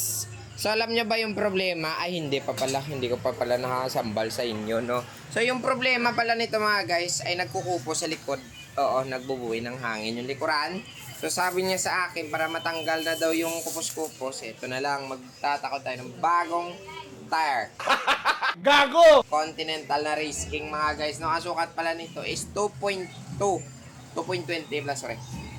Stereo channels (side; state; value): both; identical; correlation 1.00